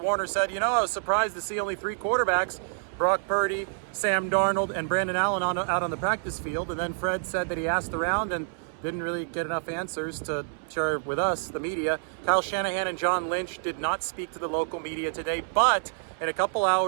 said, I was surprised to see only 3 quarterbacks, Brock Purdy, Sam Darnold, and Brandon Allen out on the practice field. And then Fred said that he asked around and didn't really get enough answers to share with us, the media. Kyle Shanahan and John Lynch did not speak to the local media today, but in a couple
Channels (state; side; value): silent; left; 60 dB below the other